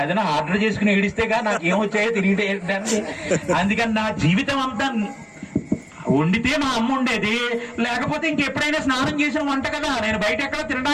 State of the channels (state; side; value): identical; both; correlation 1.00